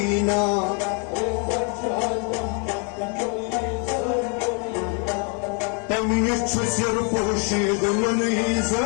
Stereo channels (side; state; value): right; quieter; 37.3 dB